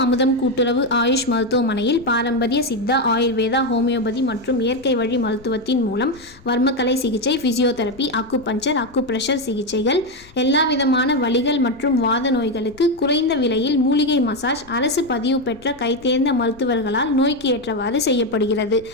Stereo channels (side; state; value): left; noise; rumble, 24 dB below the sound